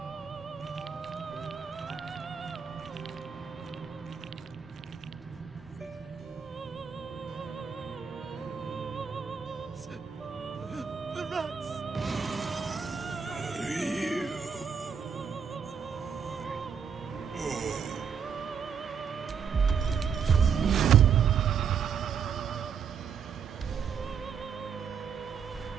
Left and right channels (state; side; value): quieter; left; 6.9 dB